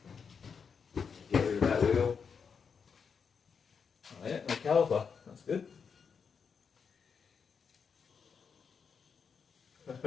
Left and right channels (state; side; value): quieter; right; 6.1 dB